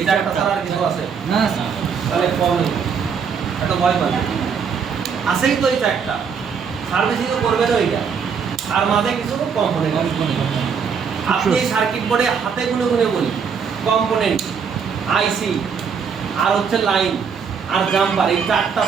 চারটা ছাড়া আর কিছু আছে না স্যার? তাহলে প্রবলেম এটা ভয় পাবে আছেই তো এই চারটা, সার্ভিসিংও করবে তো এইটা, আর মাঝে কিছু কম্পোনেন্ট আপনি সার্কিট বোর্ডে হাতে গুনে গুনে বলি কম্পোনেন্ট আইসি আর হচ্ছে লাইন আর জাম্পার, এই চারটা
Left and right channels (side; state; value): left; quieter; 6.4 dB